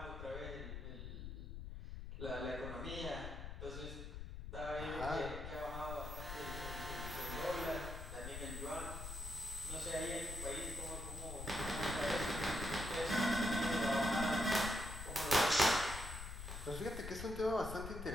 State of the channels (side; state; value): left; noise; rumble, 7 dB below the sound